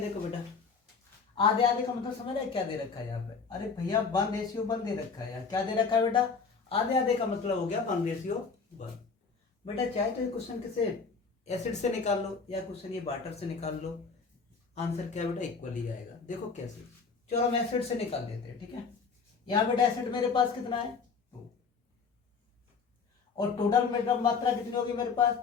बेटा, आधे आधे का मतलब समझ रहे क्या दे रखा है यहाँ पे, अरे भैया 1:1 दे रखा है यार। क्या दे रखा है बेटा, आधे आधे का मतलब हो गया 1:1। बेटा चाहे तो ये क्वेश्चन किसे एसिड से निकाल लो या क्वेश्चन ये वाटर से निकाल लो, आंसर क्या बेटा इक्वल ही आएगा। देखो कैसे, चलो हम एसिड से निकाल लेते हैं। ठीक है, यहाँ बेटा एसिड मेरे पास कितना है 2, और टोटल मेरा मात्रा कितनी होगी मेरे पास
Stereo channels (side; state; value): right; quieter; 5.2 dB